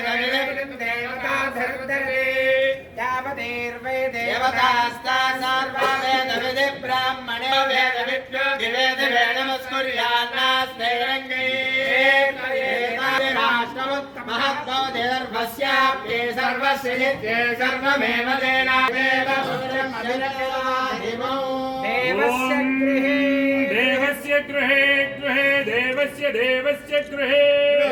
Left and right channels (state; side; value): identical; both; correlation 1.00